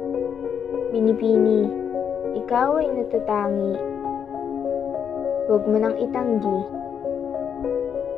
Binibini, ikaw ay natatangi. Huwag mo nang itanggi.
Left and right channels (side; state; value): right; quieter; 7.7 dB